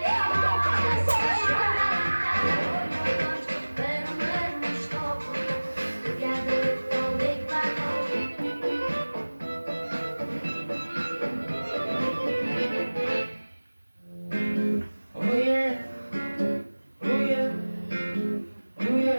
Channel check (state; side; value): inverted; both; correlation -1.00